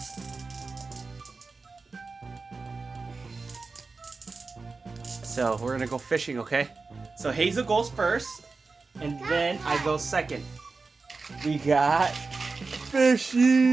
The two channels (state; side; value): quieter; left; 4.1 dB